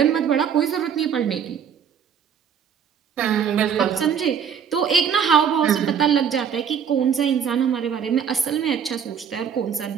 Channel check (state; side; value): quieter; left; 7.6 dB